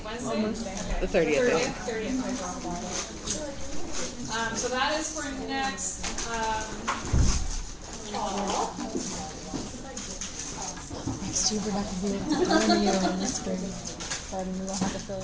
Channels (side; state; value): both; identical; correlation 1.00